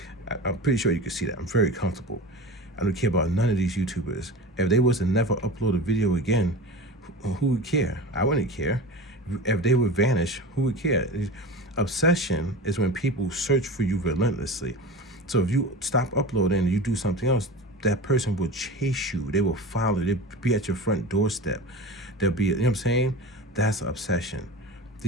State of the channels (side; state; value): both; normal; correlation 0.31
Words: I'm pretty sure you can see that. I'm very comfortable. I don't care about none of these YouTubers. If they was to never upload a video again, who would care? I wouldn't care. If they would vanish, who would care? Obsession is when people search for you relentlessly. So if you stop uploading and you do something else, that person will chase you. They will follow. They'll be at your front doorstep. They'll be, you know what I'm saying? That's obsession.